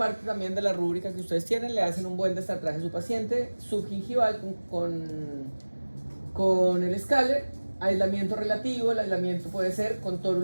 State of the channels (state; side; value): inverted; both; correlation -1.00